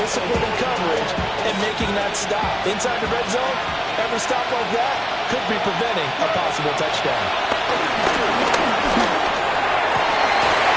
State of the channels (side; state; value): both; identical; correlation 1.00